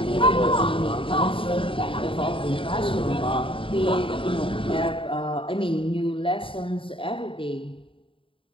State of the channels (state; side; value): late; right; 0.25 ms